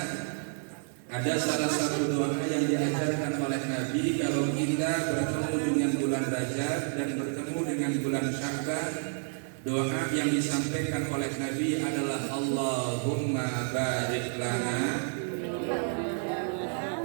ada salah satu doa yang diajarkan oleh Nabi kalau kita bertemu dengan bulan Rajab dan bertemu dengan bulan Sya'ban. Doa yang disampaikan oleh Nabi adalah Allahumma barik lana.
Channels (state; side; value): silent; left; 58 dB below the other